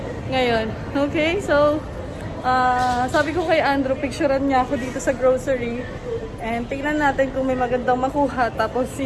ngayon. Okay, so sabi ko kay Andrew, picturean niya ako dito sa grocery. And tingnan natin kung may magandang makuha. Tapos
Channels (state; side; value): identical; both; correlation 1.00